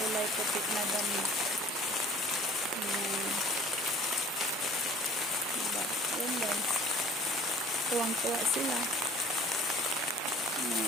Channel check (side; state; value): both; normal; correlation 0.51